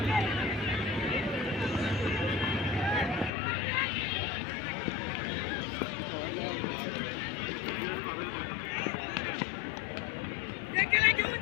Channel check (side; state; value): right; drops out; at 3.3 s